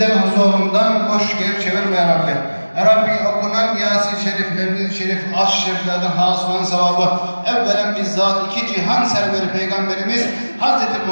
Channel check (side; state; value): both; inverted; correlation -1.00